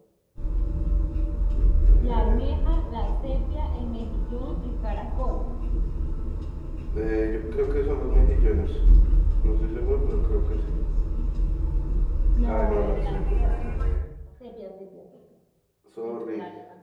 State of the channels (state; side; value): identical; both; correlation 1.00